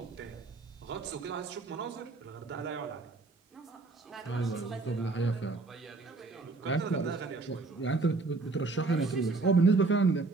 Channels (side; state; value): left; quieter; 3.7 dB